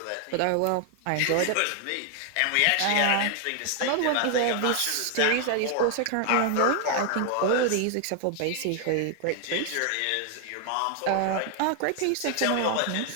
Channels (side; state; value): both; different; correlation 0.00